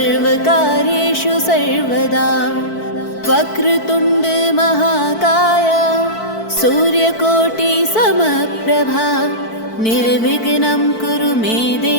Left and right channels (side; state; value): right; late; 4.5 ms